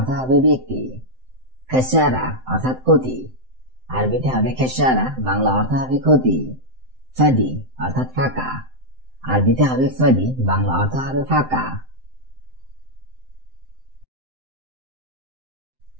হবে ব্যক্তি। খেসারা অর্থাৎ ক্ষতি, আরবিতে হবে খেসারা, বাংলা অর্থ হবে ক্ষতি। ফাদি অর্থাৎ ফাঁকা, আরবিতে হবে ফাদি, বাংলা অর্থ হবে ফাঁকা।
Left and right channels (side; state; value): left; late; 7.8 ms